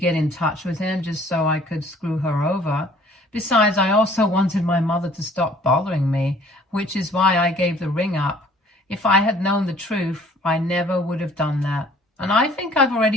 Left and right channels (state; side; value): normal; both; correlation 0.55